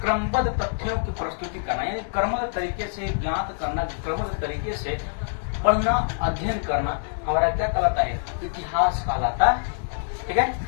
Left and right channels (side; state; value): right; silent; 62 dB below the other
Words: तथ्यों की प्रस्तुति करना, यानी क्रमबद्ध तरीके से ज्ञात करना, क्रमबद्ध तरीके से पढ़ना, अध्ययन करना हमारा क्या कहलाता है? इतिहास कहलाता है। ठीक है,